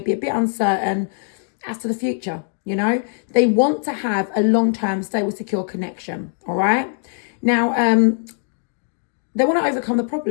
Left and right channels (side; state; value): right; silent; 65 dB below the other